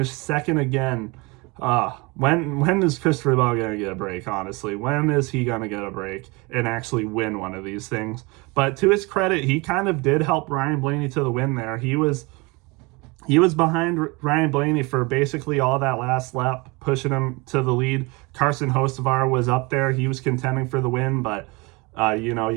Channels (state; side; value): quieter; left; 26.5 dB